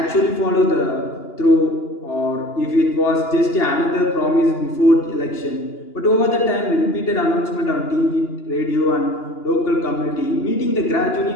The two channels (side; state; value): right; late; 2.9 ms